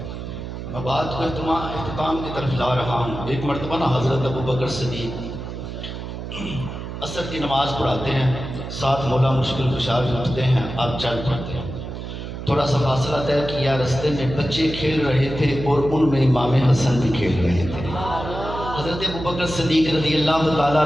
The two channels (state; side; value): noise; right; hum, 8 dB below the sound